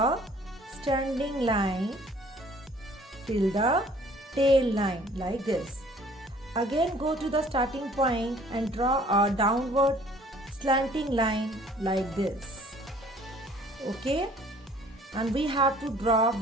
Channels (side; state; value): both; normal; correlation 0.55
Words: standing line till the tail line like this. Again go to the starting point and draw a downward slanting line like this. Okay? And we have to draw